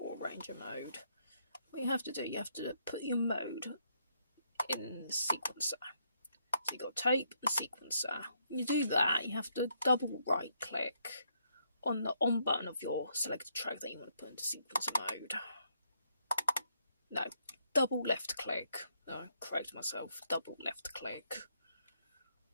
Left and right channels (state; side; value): inverted; both; correlation -0.73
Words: arranger mode, what you have to do, you have to put your mode in the sequencer. So you've got tape and sequencer. When you do that, you have to double right click on the on button of your selected track that you want to put into sequencer mode. No, double left click. No, correct myself, double left click.